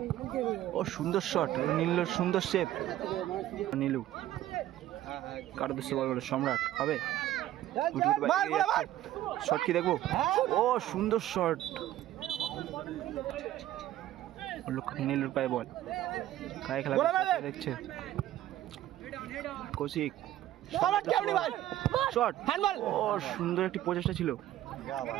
ও সুন্দর শট নীলুর সুন্দর সেভ নীলু কার উদ্দেশ্যে বল বলো সম্রাট হবে শট কি দেখবো ও সুন্দর শট নীলুর পায়ে বল কায় খেলা দেখছে কৌশিক শট ও সুন্দর একটি প্রচেষ্টা ছিল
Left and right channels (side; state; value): left; quieter; 13.7 dB